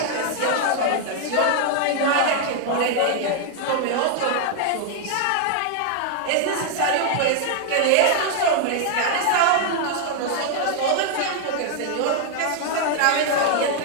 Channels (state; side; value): different; both; correlation 0.00